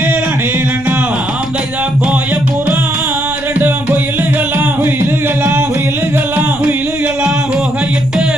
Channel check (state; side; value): noise; left; rumble, 16 dB below the sound